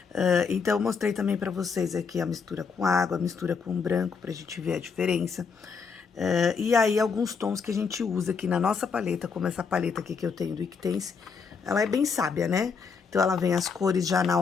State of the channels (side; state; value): right; quieter; 5.6 dB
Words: Então, eu mostrei também para vocês aqui a mistura com água, a mistura com branco, pra gente ver a diferença. E aí, alguns tons que a gente usa aqui na nossa paleta, como essa paleta aqui que eu tenho do Iquitense, ela é bem sábia, né? Então, ela vem as cores já na